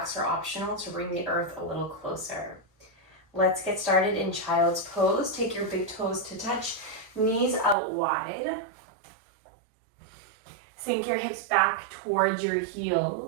are optional to bring the earth a little closer. Let's get started in child's pose. Take your big toes to touch, knees out wide. Sink your hips back towards your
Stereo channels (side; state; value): left; drops out; at 7.8 s